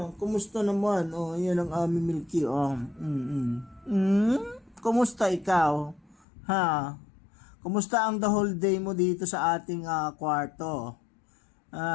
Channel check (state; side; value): drops out; right; at 6.2 s